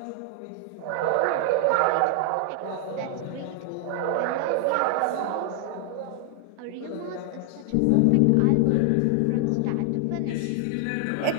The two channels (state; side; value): different; both; correlation 0.00